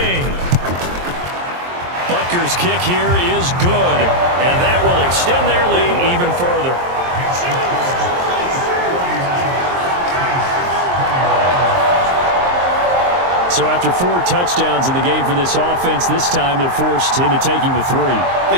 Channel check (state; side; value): late; left; 23 ms